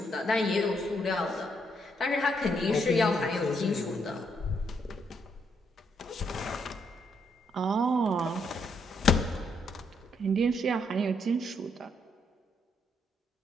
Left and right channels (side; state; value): both; normal; correlation 0.75